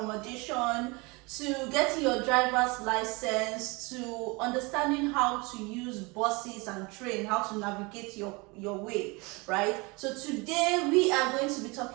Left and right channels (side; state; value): left; quieter; 26.7 dB